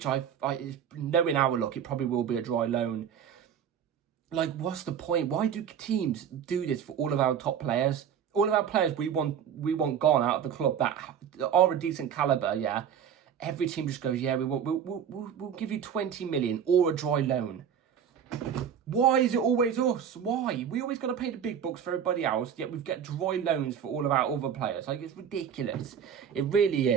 knowing our luck, it probably will be a dry loan. Like, what's the point? Why do teams do this for all of our top players? All of our players we want gone out of the club that are a decent caliber, yeah. Every team just goes, yeah, we'll give you 20 million or a dry loan. Why is it always us? Why? We always got to pay the big bucks for everybody else, yet we've got dry loans for all of our other players. Like, it's ridiculous. It really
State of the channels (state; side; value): quieter; left; 8.4 dB